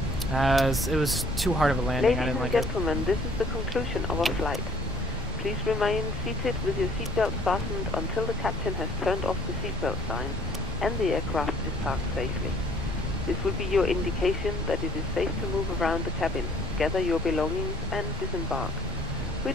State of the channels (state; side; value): normal; both; correlation 0.60